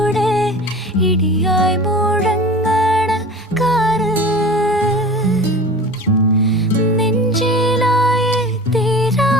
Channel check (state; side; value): normal; both; correlation 0.37